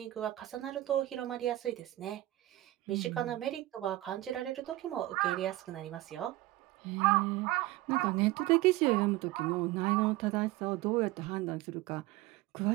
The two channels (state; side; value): quieter; left; 17.0 dB